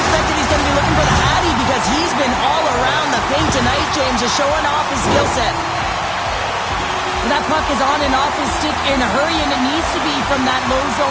just showing off his skill set. That puck is on and off his stick in a hurry, and it needs to be from that low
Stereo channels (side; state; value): both; identical; correlation 1.00